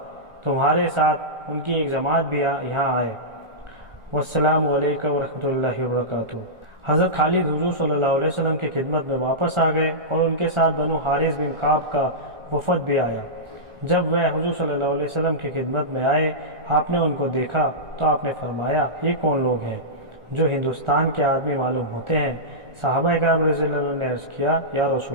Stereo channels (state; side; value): late; left; 1.4 ms